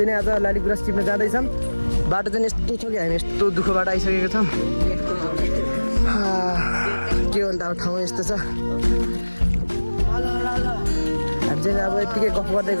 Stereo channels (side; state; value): both; inverted; correlation -1.00